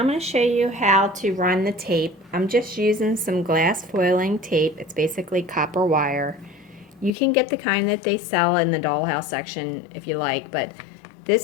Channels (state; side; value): drops out; right; at 7.1 s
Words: going to show you how to run the tape. I'm just using some glass foiling tape. It's basically copper wire. You can get the kind that they sell in the Dollhouse section if you like, but